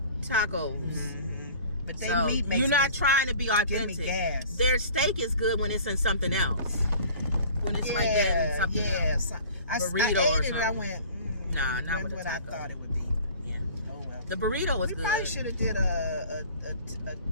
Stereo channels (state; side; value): inverted; both; correlation -0.46